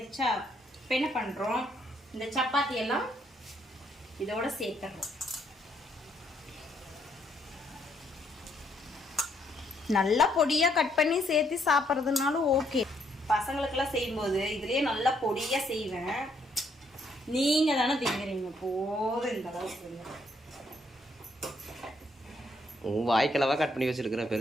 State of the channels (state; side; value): normal; both; correlation 0.71